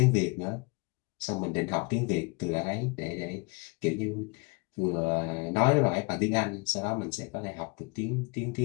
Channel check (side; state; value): right; quieter; 29.4 dB